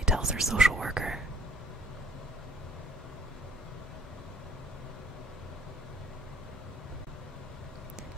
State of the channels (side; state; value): both; normal; correlation 0.58